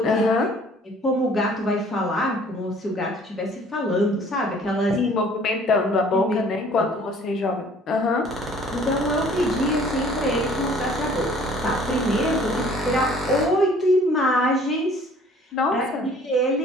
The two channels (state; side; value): normal; both; correlation 0.54